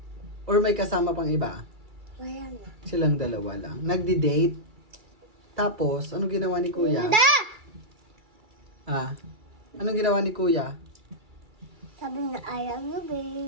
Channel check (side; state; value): left; late; 2.3 ms